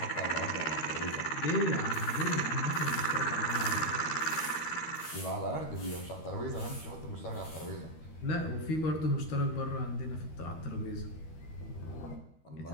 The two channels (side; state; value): right; late; 13 ms